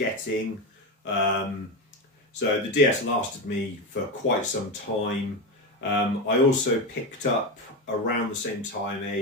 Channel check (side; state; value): both; normal; correlation 0.16